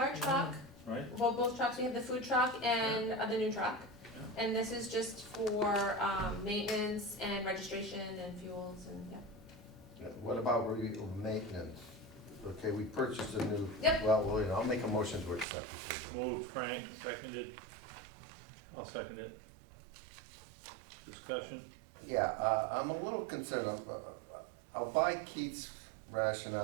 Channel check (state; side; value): drops out; left; at 15.5 s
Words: truck, Right? well, both trucks, we have the food truck and the new truck. And this is just for, maintenance and registration and fuels and, yeah. What about maintenance? Okay, we purchased a new. Yep. Well, you know, I'll make a motion to accept it. Moved, Frank, seconded. I'll second it. Discussion? Yeah, I'm a little concerned, I'll buy Keith's